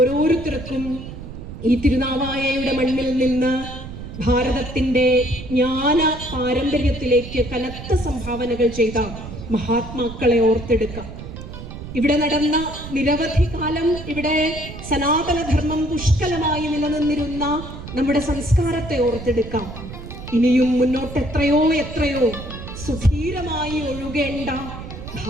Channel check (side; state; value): right; noise; rumble, 11 dB below the sound